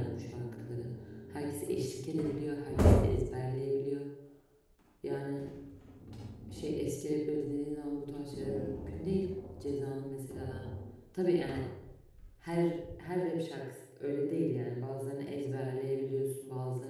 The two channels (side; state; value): both; identical; correlation 1.00